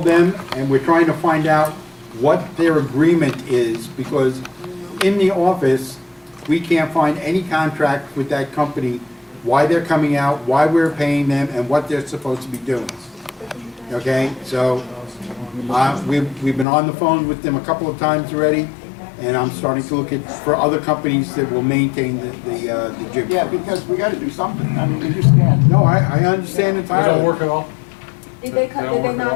them and we're trying to find out what their agreement is because in the office, we can't find any contract with that company, why they're coming out, why we're paying them, and what they're supposed to be doing. Okay, so, we've been on the phone with them a couple of times already, and I'm starting to look for other companies that will maintain the gym. Yeah, because we gotta do something. I mean, we just can't. No, I understand They entirely. don't work at all. Did They they, don't did they work at all.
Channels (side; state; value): right; drops out; at 16.7 s